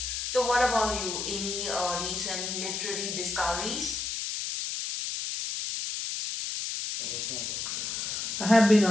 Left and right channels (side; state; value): left; noise; hiss, 3 dB below the sound